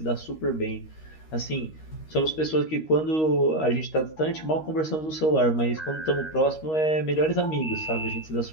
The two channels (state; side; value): late; right; 13 ms